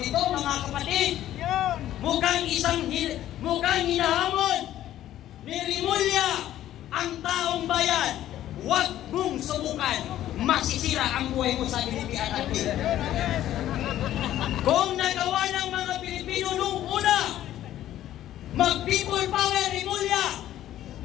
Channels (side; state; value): right; quieter; 12.7 dB